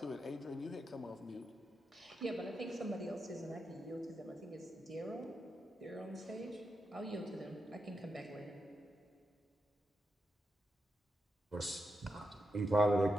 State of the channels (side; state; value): both; normal; correlation 0.86